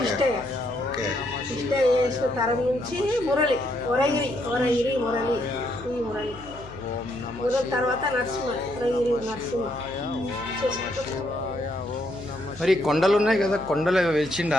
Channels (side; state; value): left; noise; hum, 16 dB below the sound